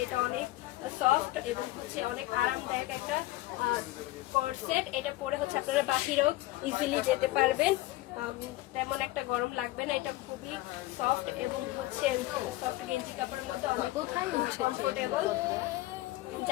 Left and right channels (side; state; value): right; quieter; 17.9 dB